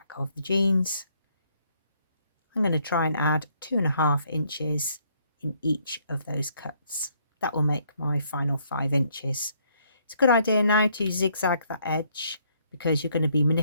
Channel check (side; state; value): both; inverted; correlation -0.69